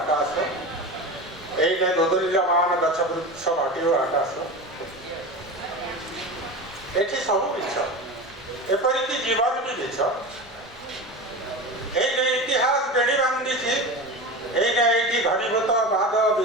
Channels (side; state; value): both; normal; correlation 0.27